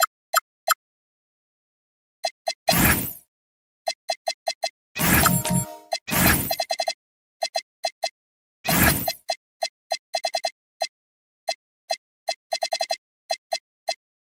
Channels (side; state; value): both; identical; correlation 1.00